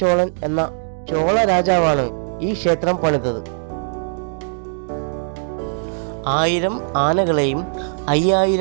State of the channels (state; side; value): silent; left; digital silence